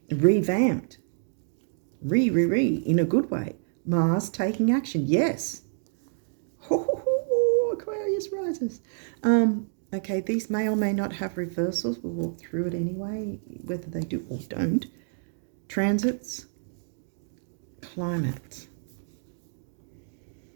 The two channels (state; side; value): silent; left; digital silence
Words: Revamped. In a good way. Mars taking action, yes. Aquarius rises. Okay, these may or may not have reversals. We'll walk through it anyway, whether they do or don't. Transits, climate.